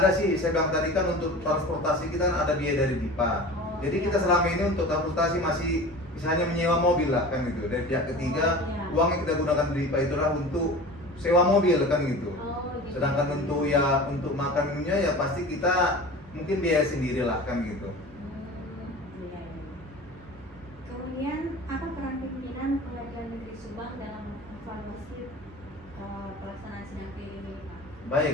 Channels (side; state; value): both; normal; correlation 0.36